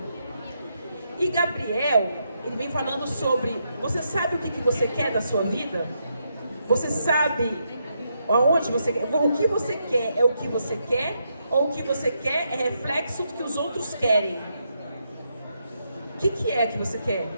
E Gabriel, ele vem falando sobre, você sabe o que você quer da sua vida? Você sabe aonde você quer? O que você quer é o que você quer? Ou o que você quer é reflexo do que os outros querem? O que é que você quer?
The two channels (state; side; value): inverted; both; correlation -0.80